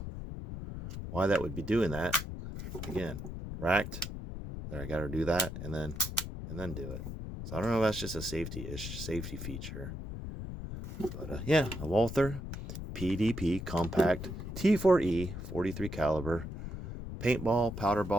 why that would be doing that. Again, racked. There, I got to do that and then do it. So I don't know if that's just a safety feature. But yeah, a Walther PDP Compact T4E 43 caliber paintball, powder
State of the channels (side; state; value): left; noise; rumble, 7 dB below the sound